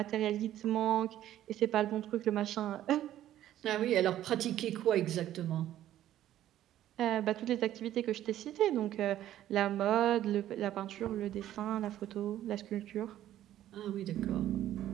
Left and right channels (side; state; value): left; quieter; 12.6 dB